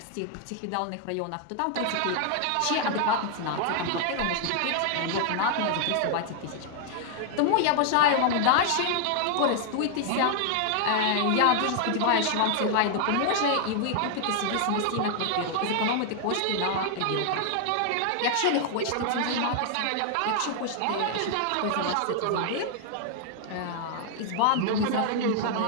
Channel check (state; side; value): different; both; correlation 0.00